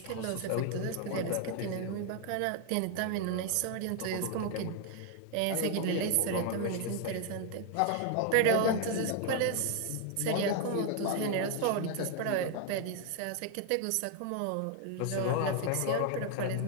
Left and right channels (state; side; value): different; both; correlation 0.00